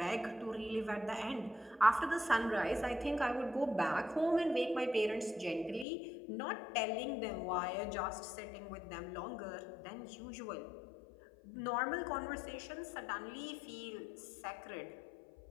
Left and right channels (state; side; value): drops out; right; at 5.9 s